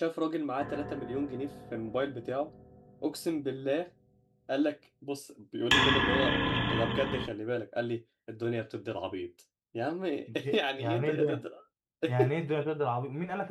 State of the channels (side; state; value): both; identical; correlation 1.00